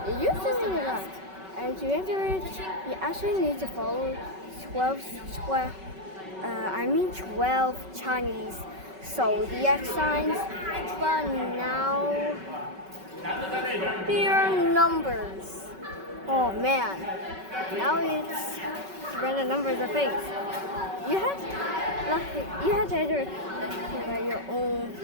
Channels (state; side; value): late; left; 5.3 ms